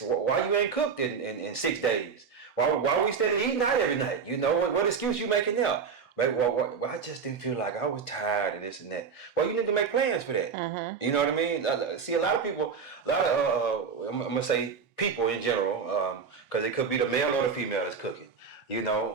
you ain't cooked in 6 days? Why we steady eating out every night? What excuse you making now? Well, I just didn't feel like I was tired and this and that. Well, you need to make plans for that. You know what I mean? See, a lot of people, I'm going to say people in general, because it could be the male or the female that's cooking.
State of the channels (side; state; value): left; quieter; 5.9 dB